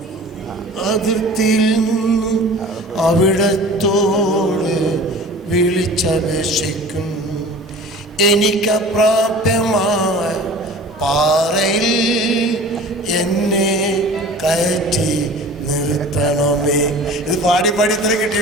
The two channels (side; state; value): both; normal; correlation 0.42